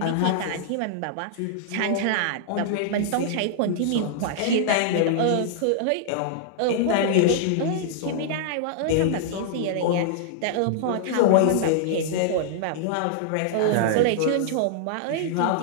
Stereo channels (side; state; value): both; different; correlation -0.01